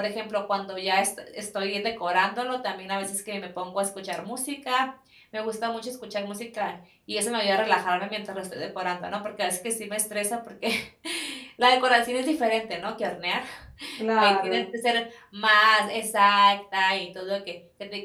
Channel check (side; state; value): both; identical; correlation 1.00